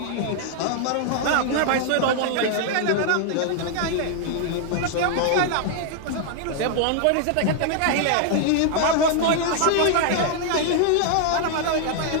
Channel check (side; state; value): both; different; correlation 0.00